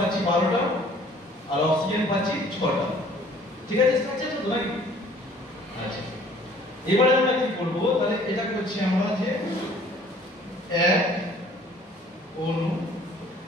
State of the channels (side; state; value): both; normal; correlation 0.54